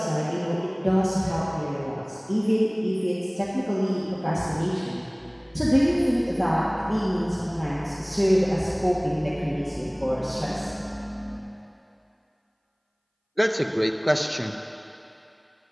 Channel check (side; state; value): both; identical; correlation 1.00